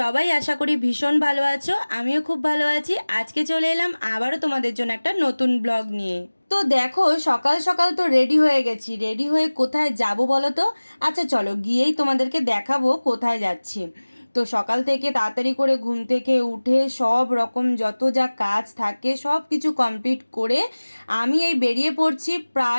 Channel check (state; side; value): inverted; both; correlation -1.00